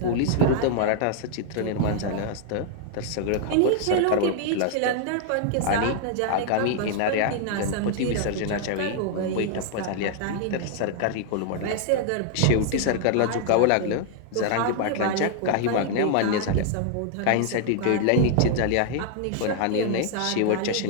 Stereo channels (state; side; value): different; both; correlation 0.00